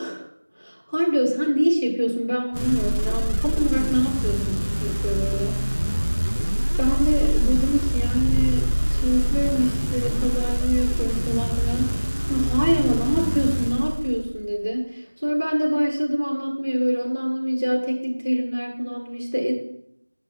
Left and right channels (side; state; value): both; inverted; correlation -1.00